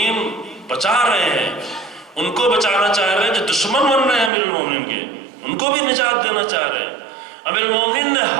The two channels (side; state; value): left; drops out; at 4.3 s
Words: بچا رہے ہیں، ان کو بچانا چاہ رہے ہیں جو دشمن بن رہے ہیں امیر المومنین کے، ان کو بھی نجات دینا چاہ رہے ہیں۔ امیر المومنین نے